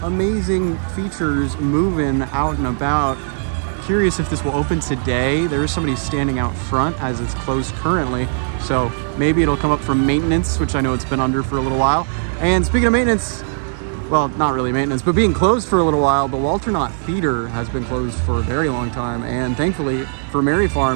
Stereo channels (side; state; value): left; silent; 67 dB below the other